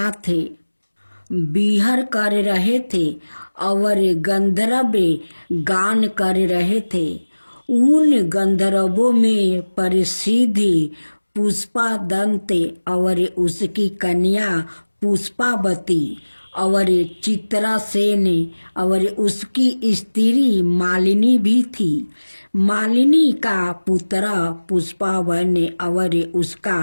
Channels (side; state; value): both; inverted; correlation -1.00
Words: विहर कर रहे थे और गंधर्व गान कर रहे थे। उन गंधर्वों में प्रसिद्ध पुष्पादंत और उसकी कन्या पुष्पावती और चित्रासेन और उसकी स्त्री मालिनी भी थी। मालिनी का पुत्र पुष्पावन और उसका